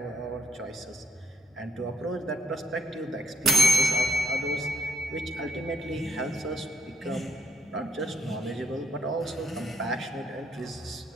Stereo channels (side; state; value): both; normal; correlation 0.71